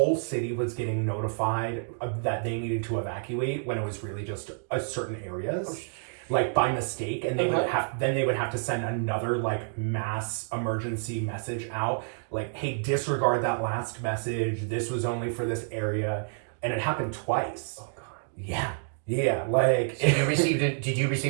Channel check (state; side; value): silent; left; digital silence